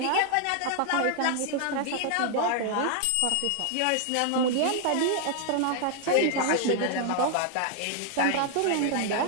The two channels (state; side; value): different; both; correlation 0.00